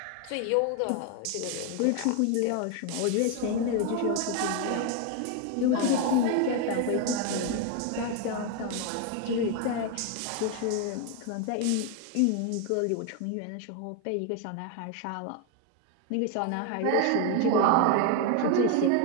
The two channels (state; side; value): different; both; correlation 0.01